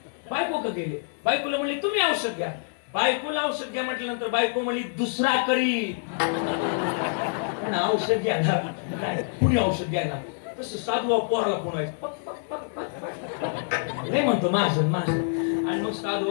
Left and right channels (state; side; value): silent; right; digital silence